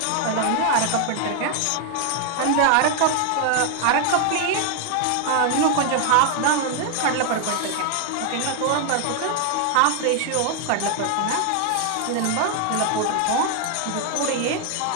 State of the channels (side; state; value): both; different; correlation 0.00